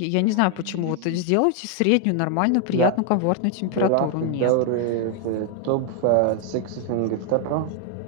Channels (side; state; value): both; different; correlation 0.00